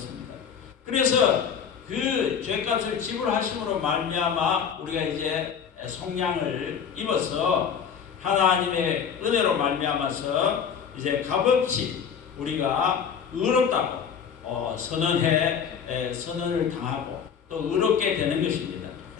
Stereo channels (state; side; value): quieter; right; 7.2 dB